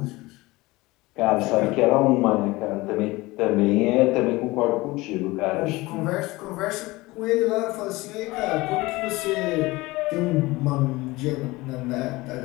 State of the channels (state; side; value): quieter; right; 21.0 dB